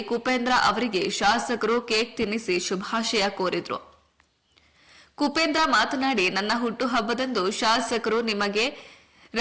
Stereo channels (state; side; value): identical; both; correlation 1.00